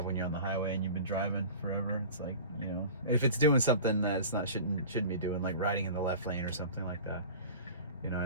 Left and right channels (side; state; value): both; inverted; correlation -0.38